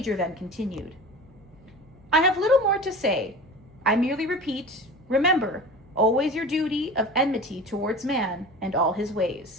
then continued. "I have little more to say. I merely repeat, remember always your duty of enmity towards man and all his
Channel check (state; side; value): noise; left; hum, 30 dB below the sound